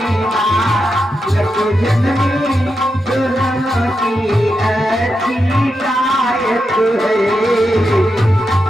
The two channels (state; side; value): normal; both; correlation 0.86